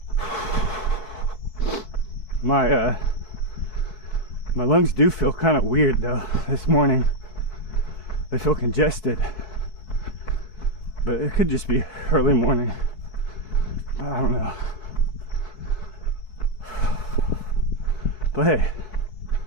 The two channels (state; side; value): late; right; 4.7 ms